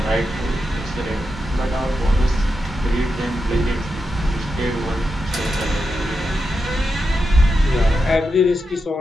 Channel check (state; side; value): normal; both; correlation 0.87